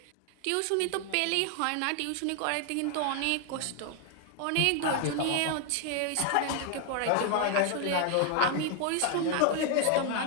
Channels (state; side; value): different; both; correlation 0.00